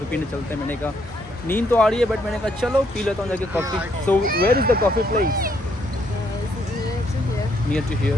पीने चलते हैं। मैंने कहा नींद तो आ रही है बट मैंने कहा चलो पी लेता हूँ जाके coffee. So where is the coffee place? Near to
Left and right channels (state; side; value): normal; both; correlation 0.71